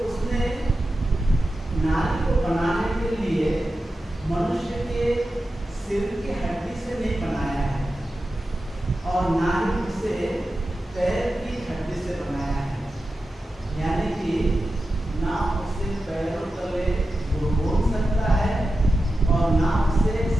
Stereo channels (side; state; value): both; normal; correlation 0.92